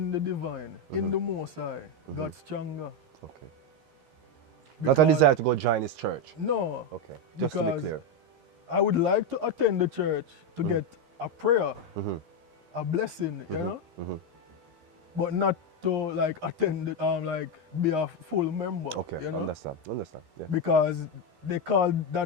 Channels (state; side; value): late; left; 13 ms